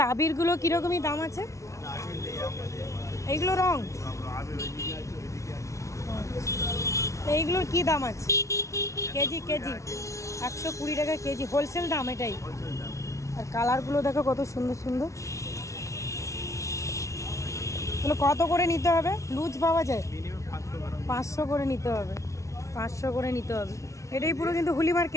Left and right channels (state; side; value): late; right; 0.14 ms